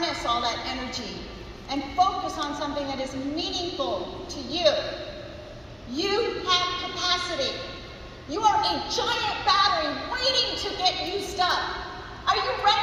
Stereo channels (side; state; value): both; identical; correlation 1.00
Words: all that energy and focus on something that is meaningful to you. You have capacity. You are a giant battery waiting to get used up. Are you